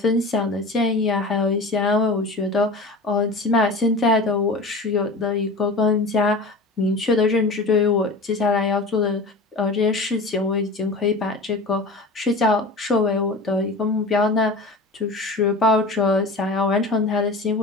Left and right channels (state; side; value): quieter; right; 3.1 dB